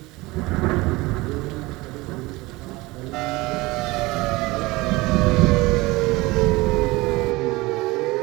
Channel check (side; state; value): left; quieter; 21.6 dB